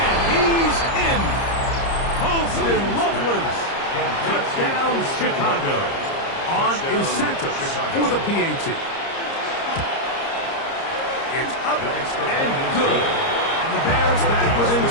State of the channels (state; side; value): late; right; 30 ms